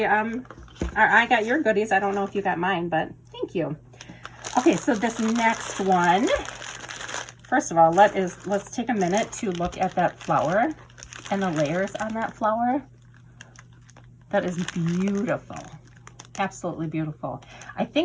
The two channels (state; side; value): identical; both; correlation 1.00